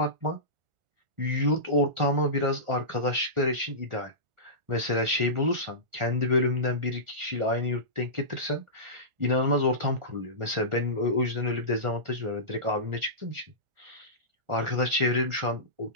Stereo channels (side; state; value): left; late; 1.4 ms